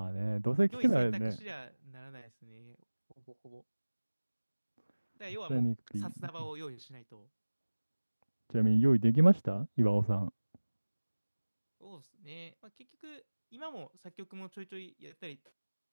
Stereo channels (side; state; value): both; inverted; correlation -1.00